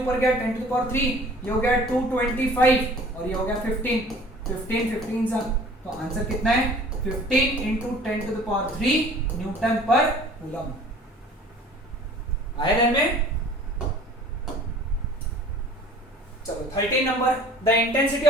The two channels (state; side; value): normal; both; correlation 0.48